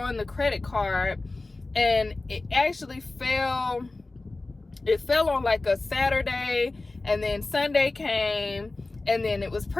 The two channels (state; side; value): quieter; right; 3.2 dB